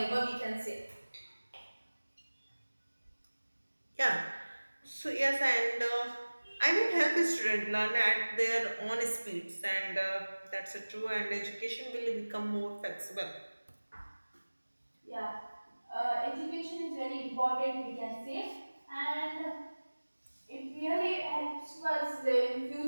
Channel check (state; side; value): inverted; both; correlation -1.00